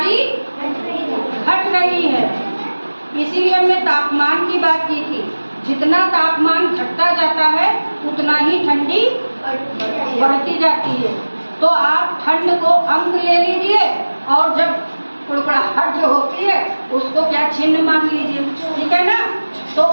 घट रही है। इसीलिए हमने तापमान की बात की थी, जितना तापमान घटता जाता है उतना ही ठंडी बढ़ती जाती है। तो आप ठंड को अंक ले लीजिए और जब कुड़कुड़ाहट जो होती है उसको क्या चिन्ह मान लीजिए, ठीक है ना। तो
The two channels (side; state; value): both; inverted; correlation -1.00